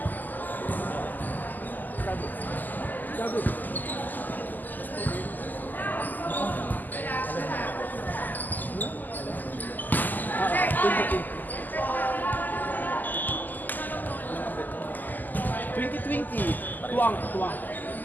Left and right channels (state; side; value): late; right; 0.085 ms